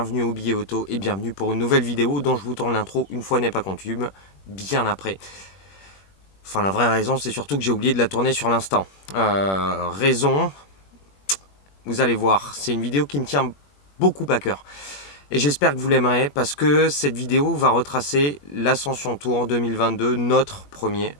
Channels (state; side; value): late; right; 21 ms